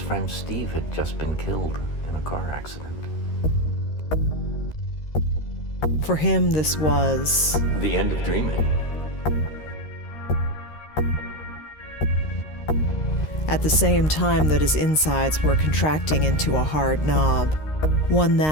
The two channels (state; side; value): late; right; 13 ms